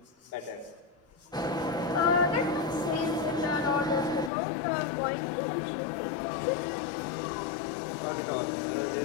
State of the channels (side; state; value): right; drops out; at 4.3 s